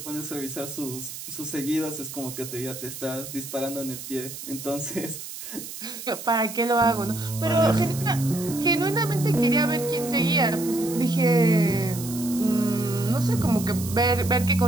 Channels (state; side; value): noise; right; hiss, 10 dB below the sound